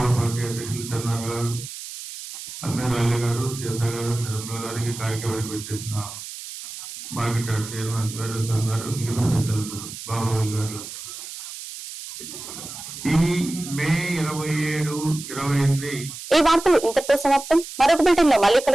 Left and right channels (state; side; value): noise; right; hiss, 11 dB below the sound